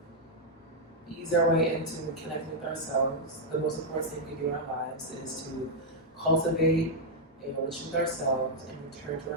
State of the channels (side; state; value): both; normal; correlation -0.04